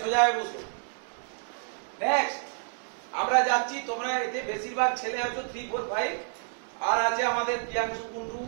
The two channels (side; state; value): left; silent; 58 dB below the other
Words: সোজায় বসো। নেক্সট আমরা যাচ্ছি। তোমরা এতে বেশিরভাগ ছেলে আছো 3, 4, 5, আর আছে আমাদের প্রিয়াংশু কুন্ডু,